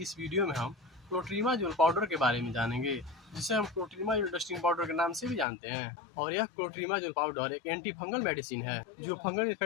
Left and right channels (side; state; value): right; drops out; at 5.5 s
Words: इस वीडियो में हम क्लोट्रीमाजोल पाउडर के बारे में जानेंगे, जिसे हम क्लोट्रीमाजोल डस्टिंग पाउडर के नाम से भी जानते हैं। और यह क्लोट्रीमाजोल पाउडर एक एंटी फंगल मेडिसिन है जो फंगल